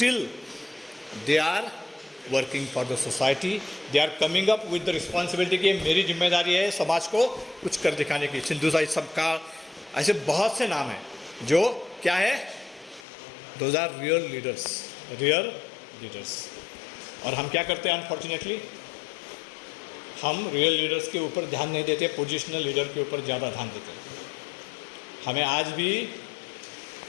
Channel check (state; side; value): drops out; right; at 13.1 s